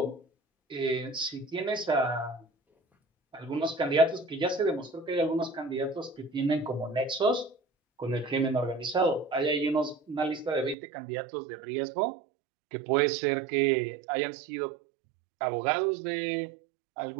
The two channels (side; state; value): left; drops out; at 10.8 s